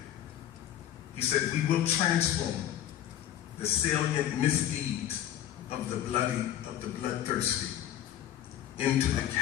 He said, "We will transform the salient misdeeds of the bloodthirsty into the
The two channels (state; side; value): quieter; right; 11.5 dB